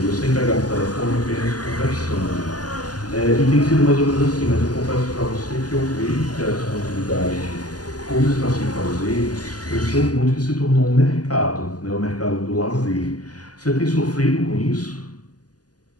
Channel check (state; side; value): late; right; 0.68 ms